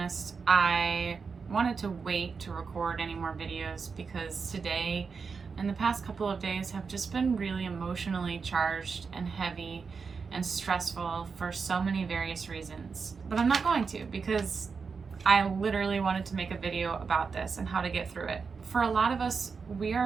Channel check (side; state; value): left; quieter; 5.3 dB